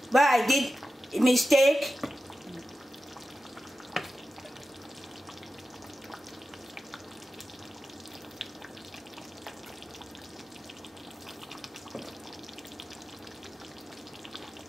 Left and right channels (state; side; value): normal; both; correlation 0.92